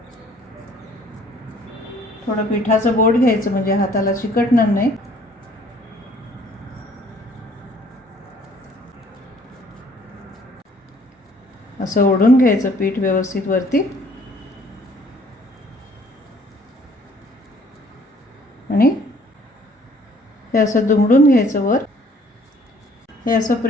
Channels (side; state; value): both; normal; correlation 0.59